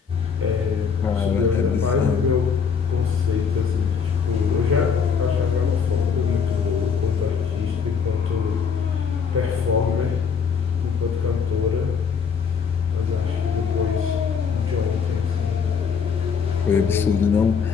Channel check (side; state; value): right; quieter; 6.3 dB